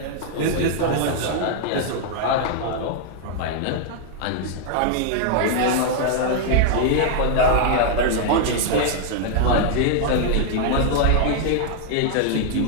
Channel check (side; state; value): both; different; correlation 0.00